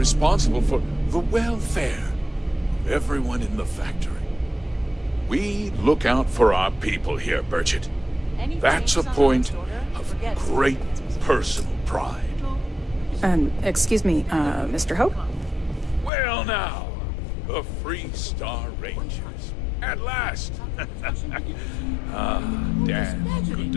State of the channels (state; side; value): drops out; right; at 16.1 s